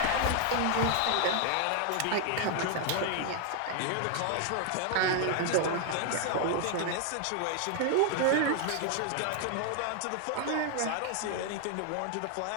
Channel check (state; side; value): different; both; correlation 0.00